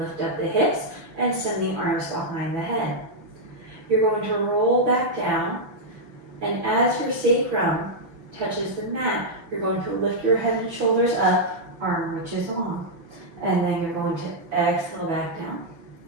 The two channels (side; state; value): left; late; 6.0 ms